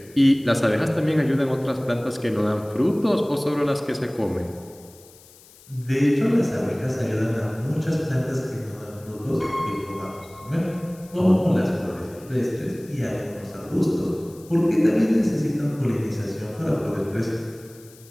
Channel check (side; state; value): left; noise; hiss, 24 dB below the sound